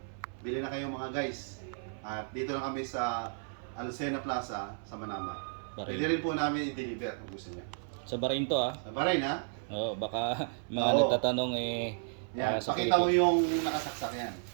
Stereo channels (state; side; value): silent; left; 56 dB below the other